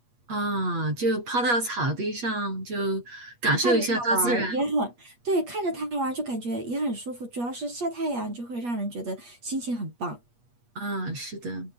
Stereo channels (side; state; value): left; late; 8.4 ms